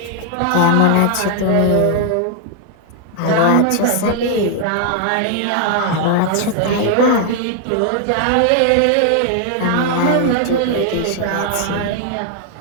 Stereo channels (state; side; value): different; both; correlation 0.00